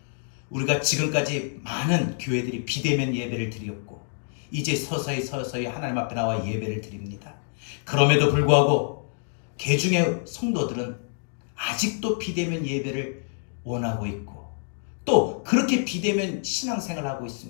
우리가 지금까지 많은 교회들이 비대면 예배를 드렸고 이제 서서히 하나님 앞에 나와 예배를 드립니다. 그럼에도 불구하고 개중의 성도들은 아직도 비대면 예배를 원하고 있고 또 그렇게 비대면 신앙생활을 하고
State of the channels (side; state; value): right; silent; digital silence